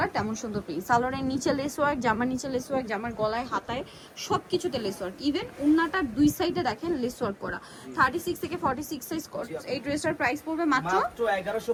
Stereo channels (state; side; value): identical; both; correlation 1.00